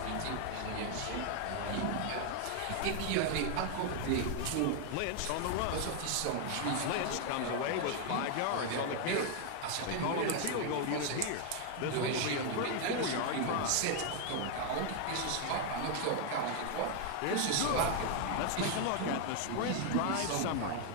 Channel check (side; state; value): both; different; correlation 0.00